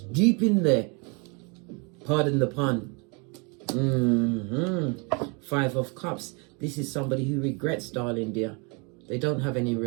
in there. Pardon the pun. 5 of Cups. This is somebody who regrets, darling dear. They don't have any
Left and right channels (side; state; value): left; quieter; 32.4 dB